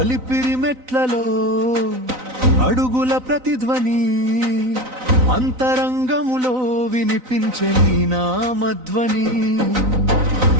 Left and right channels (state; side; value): late; left; 3.9 ms